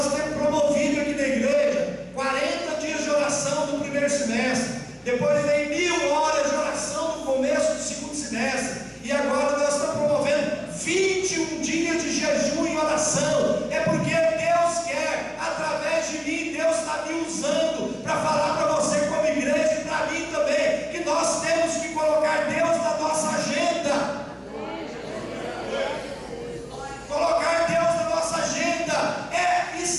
temos promovido aqui na igreja 40 dias de oração no primeiro semestre. Depois vem 1000 horas de oração no começo do segundo semestre. E agora nós estamos promovendo 21 dias de jejum e oração. É porque Deus quer, através de mim, Deus está me usando para falar para você como igreja e para mim também, que nós temos que colocar Deus na nossa agenda. Colocar Deus na nossa agenda é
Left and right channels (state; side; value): identical; both; correlation 1.00